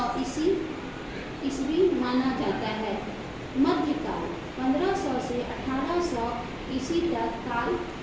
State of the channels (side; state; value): both; identical; correlation 1.00